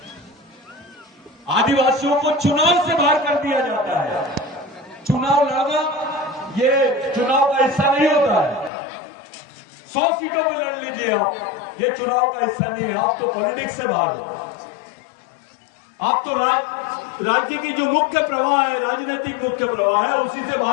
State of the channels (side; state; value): right; drops out; at 8.7 s